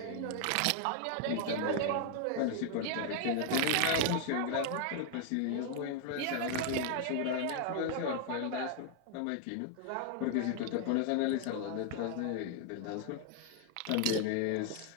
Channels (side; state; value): both; different; correlation 0.00